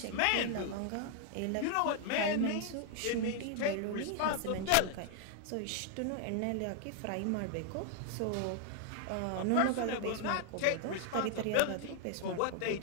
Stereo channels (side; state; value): both; different; correlation 0.00